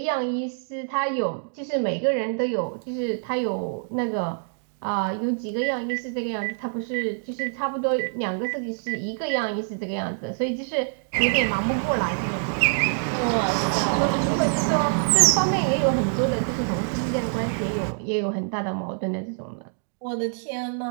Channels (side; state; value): left; silent; digital silence